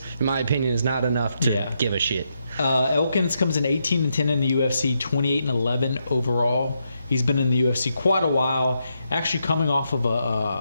in my opinion, is not enough to give a shit. Elkins comes in 18-10 in the UFC, 28-11 overall. He's been in the UFC quite a while, actually coming off of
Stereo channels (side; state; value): both; inverted; correlation -0.81